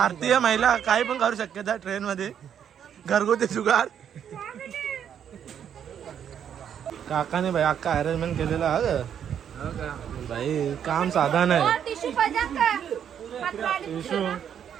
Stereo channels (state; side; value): quieter; left; 8.8 dB